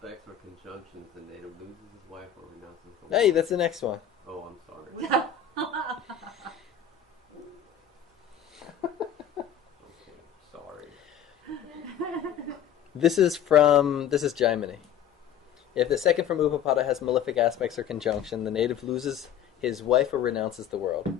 or conjunctions, the native loses his wife or renounces the Hey, wife. that's the next one. Oh, I'm sorry. Okay, sorry. This is Jaimini. If the second from Upapada has malefic aspects or conjunction, the native loses his wife or renounces the world.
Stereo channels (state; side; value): quieter; right; 8.8 dB